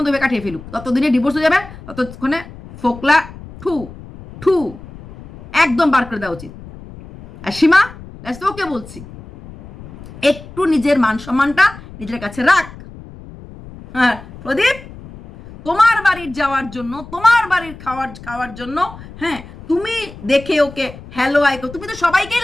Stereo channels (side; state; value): left; noise; rumble, 17 dB below the sound